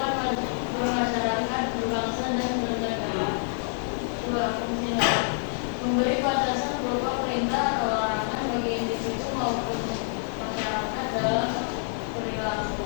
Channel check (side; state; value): right; silent; 60 dB below the other